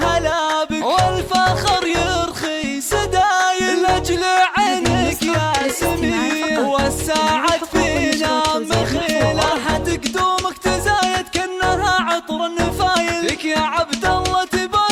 بك والفخر يرخي سدايل لاجل عينك يا سمي والساعد فينا مخيله حد قدومك تزايد كأنها عطر النفايل لك يا عبد الله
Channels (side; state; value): both; identical; correlation 1.00